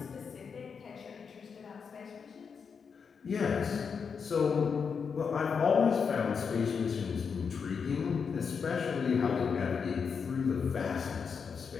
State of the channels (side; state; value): right; quieter; 6.1 dB